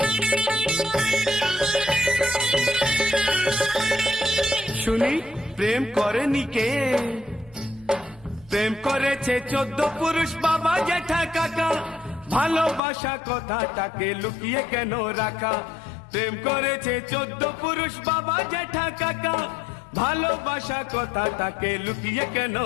শুনি প্রেম করেনি কে? প্রেম করেছে 14 পুরুষ বাবা জ্যাঠা কাকা। ভালোবাসা কথাটাকে লুকিয়ে কেন রাখা? প্রেম করেছে 14 পুরুষ বাবা জ্যাঠা কাকা। ভালোবাসা কথাটাকে লুকিয়ে কেন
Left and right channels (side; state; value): right; drops out; at 12.8 s